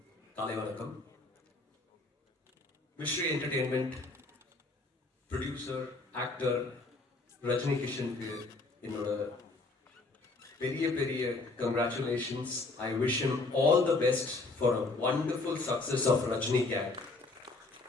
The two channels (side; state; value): right; quieter; 3.4 dB